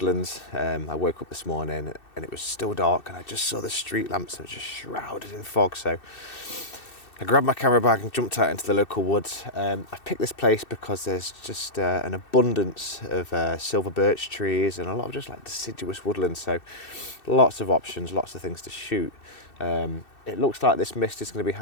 I woke up this morning and it was still dark and I just saw the street lamps that were just shrouded in fog. So I grabbed my camera bag and jumped out into the local woods. I've picked this place because there's just an abundance of silver birch trees and a lot of just like deciduous woodland. So lots of options, lots of things to shoot. It looks like this mist is going to be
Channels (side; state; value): right; late; 2.6 ms